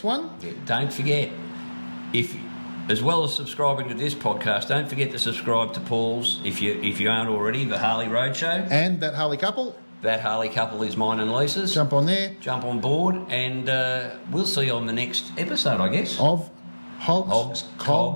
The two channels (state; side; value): inverted; both; correlation -1.00